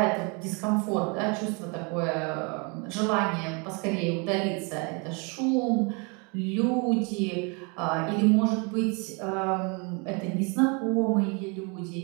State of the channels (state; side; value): quieter; left; 32.6 dB